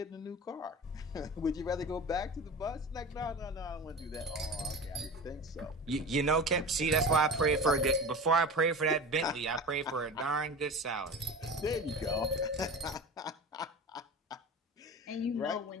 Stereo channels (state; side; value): normal; both; correlation 0.33